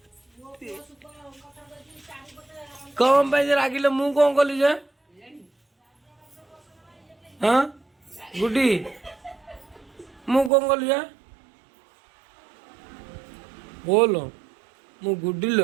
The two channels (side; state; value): left; drops out; at 10.5 s